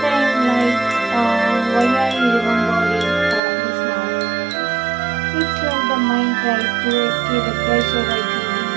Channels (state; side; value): drops out; left; at 3.4 s